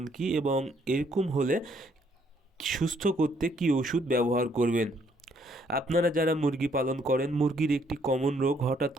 কি এবং এরকম হলে সুস্থ করতে কি ওষুধ ব্যবহার করবেন। আপনারা যারা মুরগি পালন করেন, মুরগির একটি কমন রোগ, হঠাৎ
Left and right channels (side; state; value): both; normal; correlation 0.68